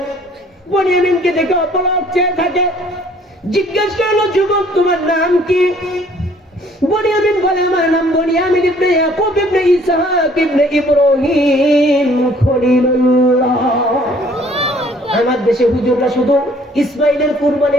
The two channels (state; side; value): normal; both; correlation 0.58